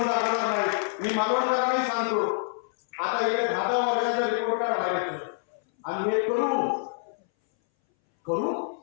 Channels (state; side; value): silent; right; 60 dB below the other